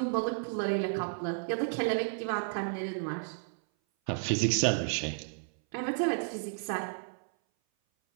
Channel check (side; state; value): left; silent; 56 dB below the other